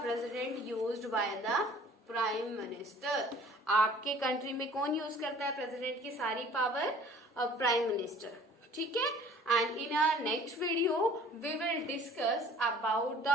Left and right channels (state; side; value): normal; both; correlation 0.51